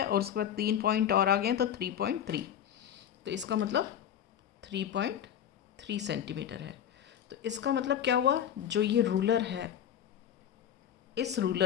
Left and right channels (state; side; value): quieter; right; 9.6 dB